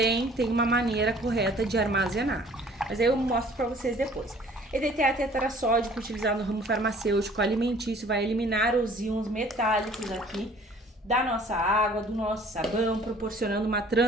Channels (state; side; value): normal; both; correlation 0.53